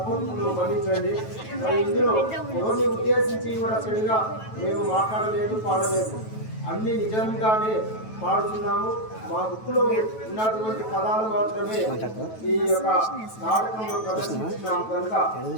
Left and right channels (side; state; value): right; late; 9.2 ms